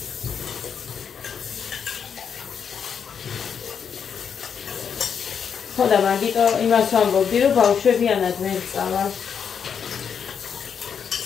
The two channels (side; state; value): right; quieter; 7.2 dB